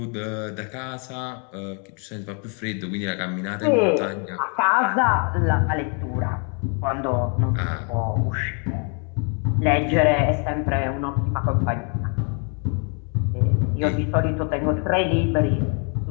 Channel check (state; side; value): quieter; right; 38.5 dB